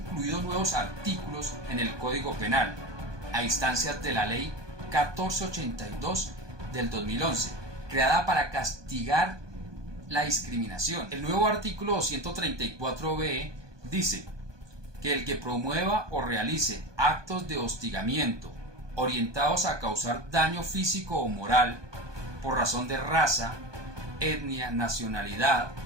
nuevos artículos en el Código Penal, a instancias de la Ley 1482 del 2011, creada para castigar la discriminación. El nuevo artículo 234b dice que el que promueva o realice actos de hostigamiento orientados a causar daño físico o moral por razón de raza, etnia, nacionalidad,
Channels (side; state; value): left; late; 1.2 ms